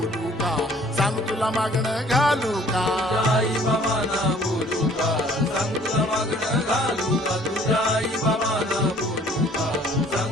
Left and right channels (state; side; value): normal; both; correlation 0.56